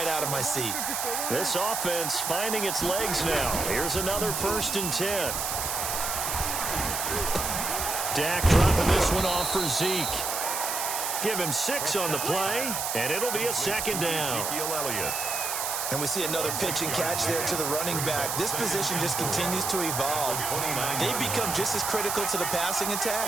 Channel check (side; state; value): right; noise; hiss, 2 dB below the sound